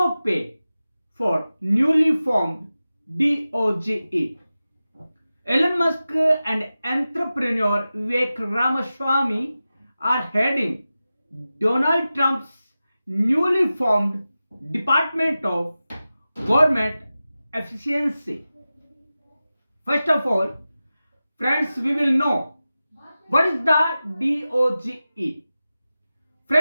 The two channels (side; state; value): both; inverted; correlation -0.94